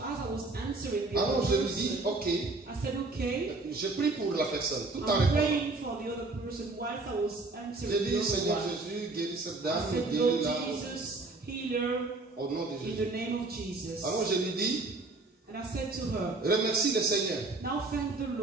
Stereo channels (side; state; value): left; quieter; 3.4 dB